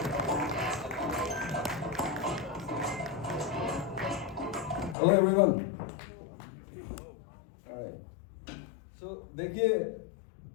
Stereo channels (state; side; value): drops out; right; at 5.0 s